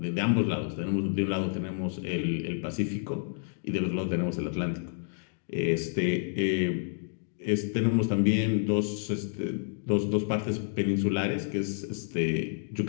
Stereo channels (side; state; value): right; silent; 58 dB below the other